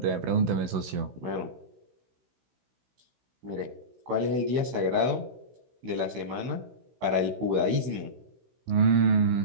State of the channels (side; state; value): left; late; 16 ms